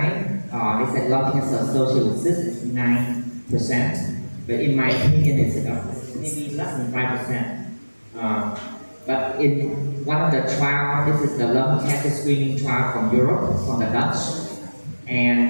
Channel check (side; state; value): both; inverted; correlation -1.00